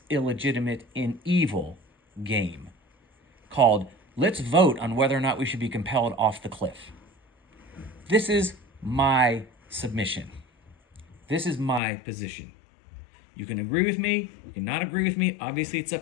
illegitimate, and evil game called, let's vote on whether or not we should be compelled off the cliff. This is my submission. This is my position. You can agree with me, you can not agree with me, obviously it's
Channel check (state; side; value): drops out; right; at 11.8 s